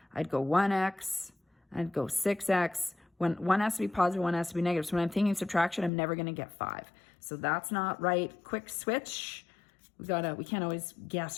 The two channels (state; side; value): drops out; right; at 5.9 s